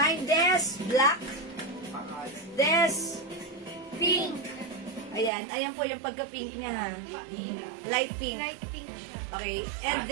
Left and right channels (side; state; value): left; drops out; at 5.3 s